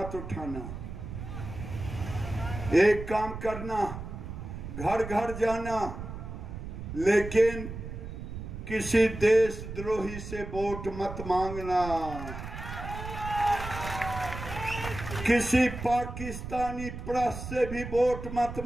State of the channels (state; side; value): noise; right; rumble, 9 dB below the sound